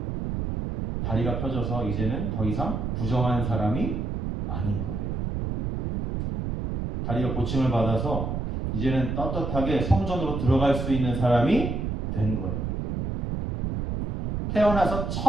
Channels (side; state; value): right; noise; rumble, 2 dB below the sound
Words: 다리가 펴져서 이제는 더 이상 부정한 사람이 아닌 거예요. 다리가 고침을 받아서 이제는 떳떳하게 성전으로 들어갈 수 있는 사람이 된 거예요. 태어나서